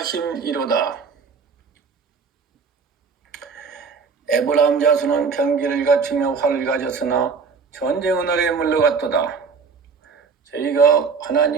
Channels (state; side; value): quieter; left; 5.3 dB